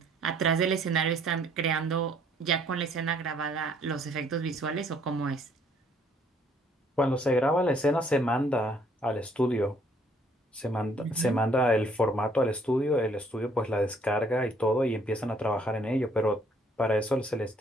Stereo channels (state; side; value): normal; both; correlation 0.63